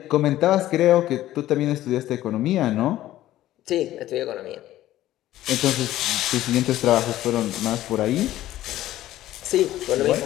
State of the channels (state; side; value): quieter; right; 14.3 dB